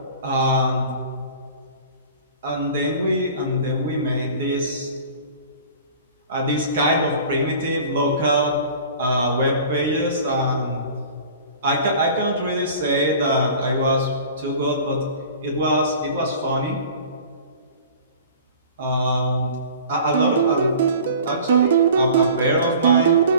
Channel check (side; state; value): both; inverted; correlation -0.44